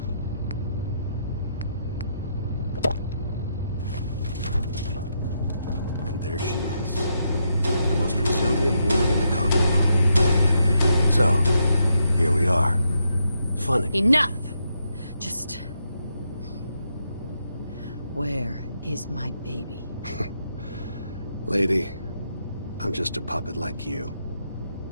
And there she is. The most resilient woman in the Commonwealth. So, here we are. Funny. Enough! Just... Where is my baby? Lady, I'm just a puppet like you.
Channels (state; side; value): inverted; both; correlation -0.80